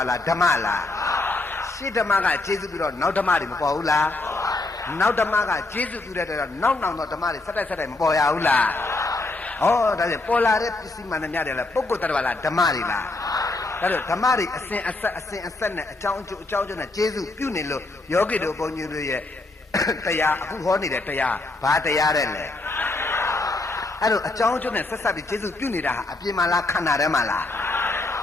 လားဓမ္မလားရှင်းဓမ္မကကျေစုပြီးတော့နောက်ဓမ္မတွေမပေါ်ဘူးလားနောက်ဓမ္မကကျေစုပြုတဲ့တော့နောက်တော့ဓမ္မတွေဆက်တိုက်မပေါ်ရဘူးလားဩဒါဖြင့်ပေါ်လာတဲ့ပစ္စည်းမှန်တဲ့များတယ်လားပုဂ္ဂိုလ်တ attva လားဓမ္မတွေလားဒါတော့ဓမ္မတွေအစဉ်အဆက်နဲ့အကြောင်းအကျိုးနဲ့ကျေစုပြုနေလို့ယောဂီတို့ဘုန်းကြီးတို့ရဲ့တရားအခုဟောနေတဲ့တရားဘာတရားတဲ့လဲအဲ့တော့အကြောင်းအကျိုးနဲ့ဆက်ပြီးကျေစုပြုနေတာဟာအပြင်မှာလားခန္ဓာထဲမှာလား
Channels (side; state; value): right; quieter; 3.1 dB